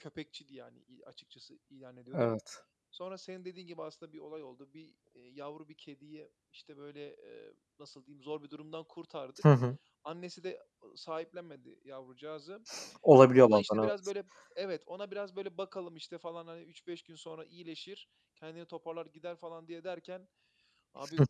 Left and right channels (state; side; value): identical; both; correlation 1.00